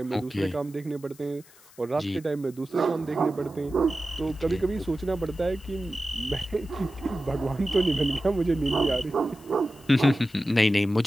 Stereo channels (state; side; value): noise; left; hiss, 25 dB below the sound